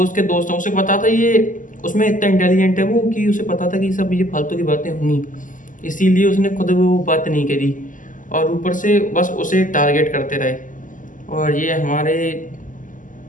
उसके दोस्तों से पता था ये उसमें इतना इंटेलिजेंट है वो कि उसे पता था कि सब ये फालतू की बातें होंगी, इसीलिए उसने खुद वो बात नहीं करी, और ऊपर से बस उसे टारगेट करते रहे। और ये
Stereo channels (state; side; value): late; right; 0.38 ms